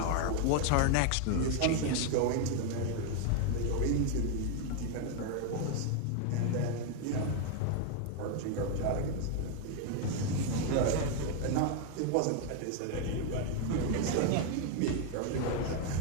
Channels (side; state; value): both; different; correlation 0.01